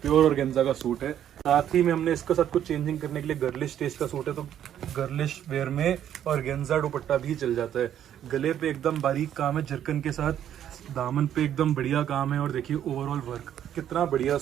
प्योर ऑर्गेन्जा का सूट है। साथ ही में हमने इसका साथ कुछ चेंजिंग करने के लिए गर्लिश टेस्ट का सूट है, तो गर्लिश वेयर में ऑर्गेन्जा दुपट्टा भी चल जाता है। गले पे एकदम बारीक काम है जरकन के साथ, दामन पे एकदम बढ़िया काम है, और देखिए ओवरऑल वर्क कितना बढ़िया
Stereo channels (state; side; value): quieter; left; 10.4 dB